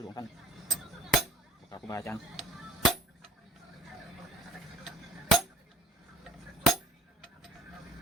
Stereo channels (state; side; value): normal; both; correlation 0.48